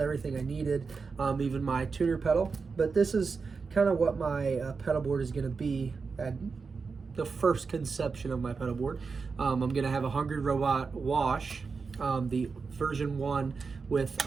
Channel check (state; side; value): quieter; left; 4.9 dB